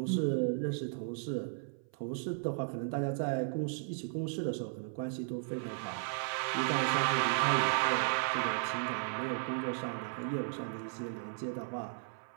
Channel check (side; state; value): left; silent; 54 dB below the other